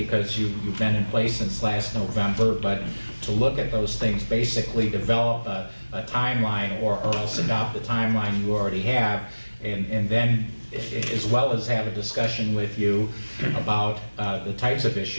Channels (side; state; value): both; inverted; correlation -1.00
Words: you've been in place since last November, but to look at those things, basically develop a timeline or else adopt the timeline you already have, and then as well as have a discussion with you about the types of